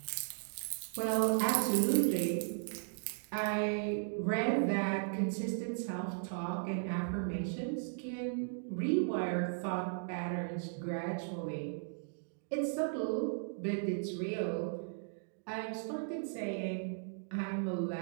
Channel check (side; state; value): left; silent; digital silence